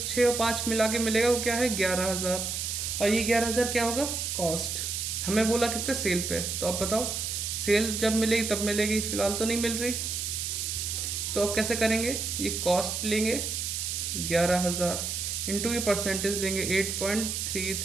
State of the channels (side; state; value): right; noise; hiss, 2 dB below the sound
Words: और 5 मिला के मिलेगा वो क्या है 11000, और ये 11000 क्या होगा, कॉस्ट। हमें बोला किस पे, सेल पे। तो अब बताओ सेल जब मिलेगी तब मिलेगी, फिलहाल तो नहीं मिल रही। तो अब कैसे करेंगे, ये कॉस्ट लेंगे 11000 इंटू ये परसेंटेज लेंगे